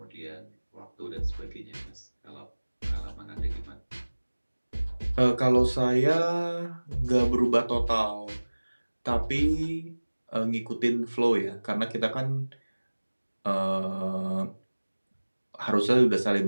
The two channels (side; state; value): both; inverted; correlation -1.00